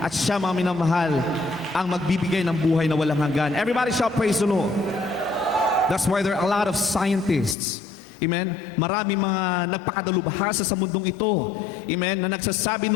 siya, mga minamahal, ang magbibigay ng buhay na walang hanggan. Everybody shout praise the Lord. That's why there are a lot of scientists, amen, marami mga nagpakadalubhasa sa mundong ito, amen, na nagsasabi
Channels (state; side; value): drops out; right; at 7.6 s